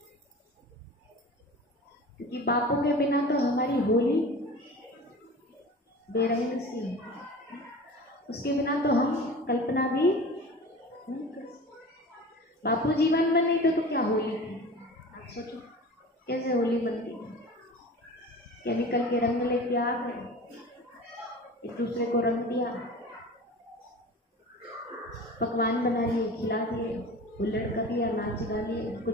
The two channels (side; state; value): both; normal; correlation 0.37